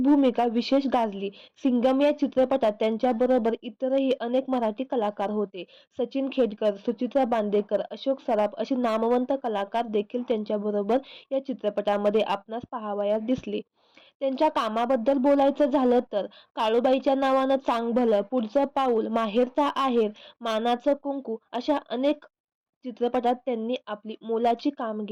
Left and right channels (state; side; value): identical; both; correlation 1.00